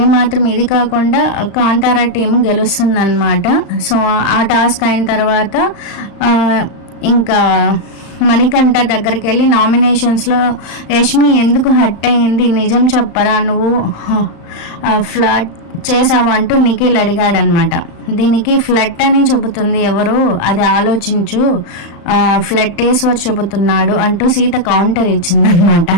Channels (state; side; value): late; right; 35 ms